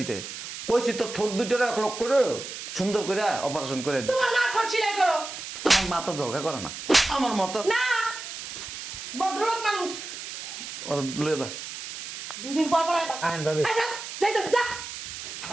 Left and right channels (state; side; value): noise; right; hiss, 9 dB below the sound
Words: কইছি তোর ঠোঁট দুইটারে 1 লক্ষ করে সুন্দর করে অপারেশন করে দিতে তোমার না ঠট সিলাই করো আমার মাথা জলকা করে না আমার মতো না ভদ্রলোক মানুষ ওর লয়ে যা দুই দিন পর পর আইবা। আহেন ভাবি আচ্ছা যাইতাছি যা